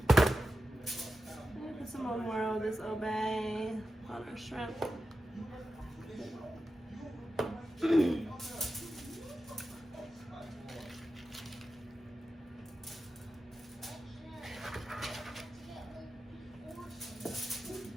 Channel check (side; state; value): both; normal; correlation 0.92